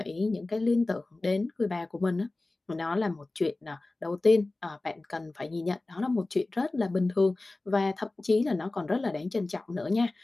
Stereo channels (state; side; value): quieter; right; 3.0 dB